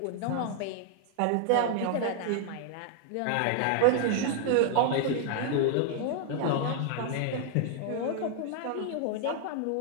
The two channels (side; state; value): both; different; correlation 0.00